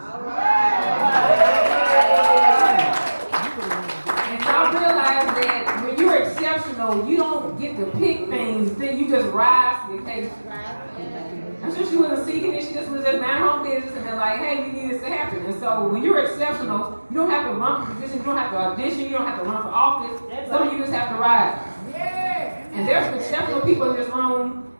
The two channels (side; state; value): both; inverted; correlation -1.00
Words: And so I realized that when you're exceptional, you don't get to pick things, then you just rise to the occasion. I'm sure she wasn't seeking it, she just was just mind her own business and they're like, hey, we need this to happen. And so when you're exceptional, you don't have to run for position, you don't have to audition, you don't have to run for office. Some of you just have to rise. And there's some exceptional people in this room,